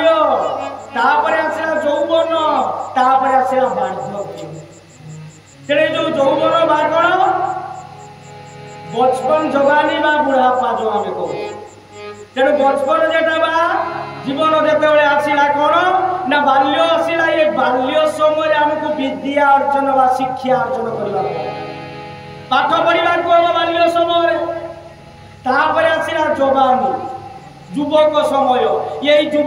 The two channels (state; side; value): identical; both; correlation 1.00